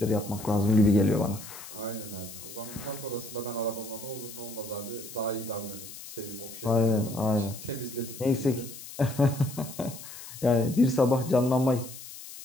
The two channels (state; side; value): noise; left; hiss, 13 dB below the sound